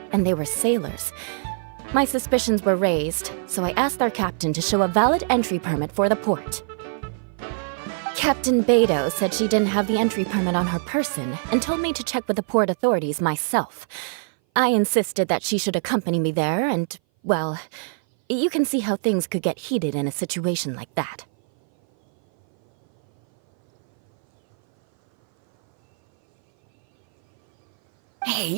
and they were sailors. My suspicions were raised, so I asked our captain to show a valid entry permit for the port. Captain Beto said she didn't have the entry permit on her person and told me to check with the port authorities myself. I insisted that she should accompany me there, and, well, you can see how things could get heated in a situation like that.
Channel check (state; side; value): silent; left; 59 dB below the other